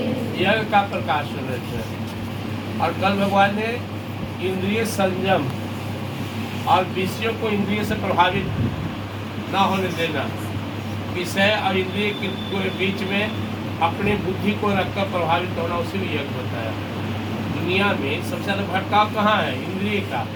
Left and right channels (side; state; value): both; identical; correlation 1.00